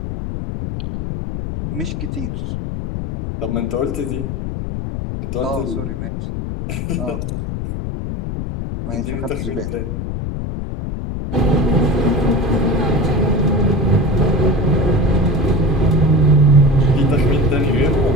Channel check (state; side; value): noise; left; rumble, 5 dB below the sound